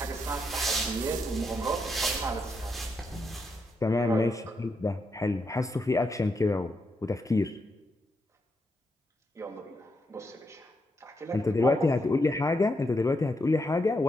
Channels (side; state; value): both; normal; correlation 0.81